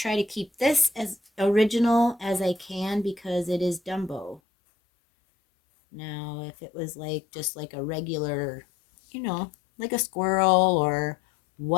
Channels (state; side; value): drops out; right; at 4.4 s